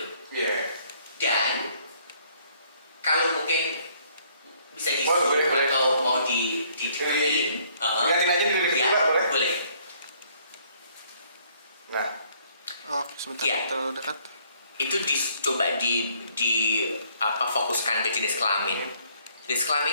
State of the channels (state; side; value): inverted; both; correlation -0.64